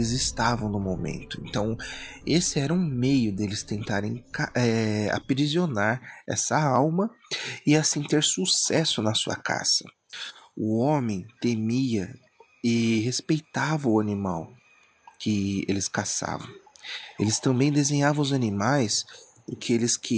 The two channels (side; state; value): both; identical; correlation 1.00